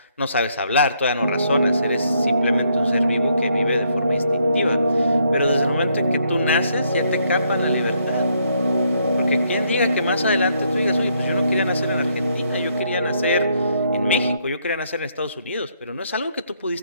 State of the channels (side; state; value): both; inverted; correlation -0.72